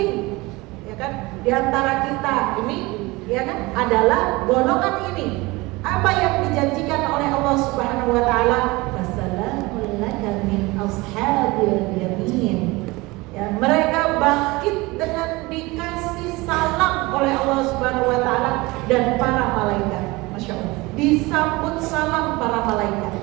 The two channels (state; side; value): quieter; left; 22.6 dB